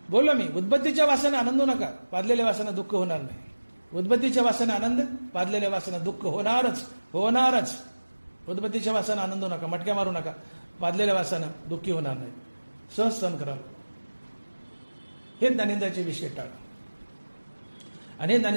बोललो मी, उद्बत्तीच्या वासाने आनंद नका, पादलेल्या वासाने दुःख होणार नाही. उद्बत्तीच्या वासाने आनंद, पादलेल्या वासाने दुःख होणारच. उद्बत्तीच्या वासाने आनंद नका, मटक्या मारू नका, पादलेल्या वासानं दुःखी होणार नाही. सहज सहन कराल. हे दारिद्र्याचे विषय टाळा. आणि हे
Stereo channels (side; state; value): both; inverted; correlation -1.00